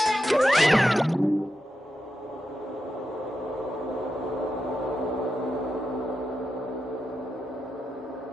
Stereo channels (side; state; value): both; normal; correlation 0.87